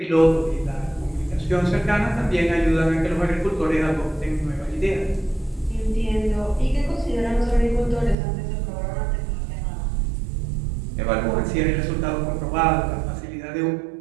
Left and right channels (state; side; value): drops out; left; at 8.2 s